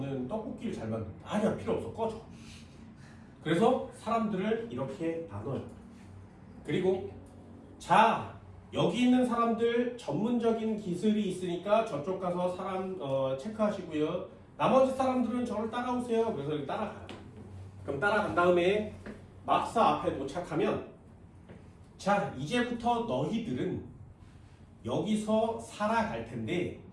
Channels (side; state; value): both; identical; correlation 1.00